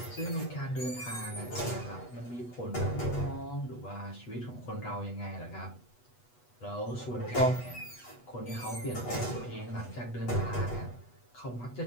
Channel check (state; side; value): late; right; 8.2 ms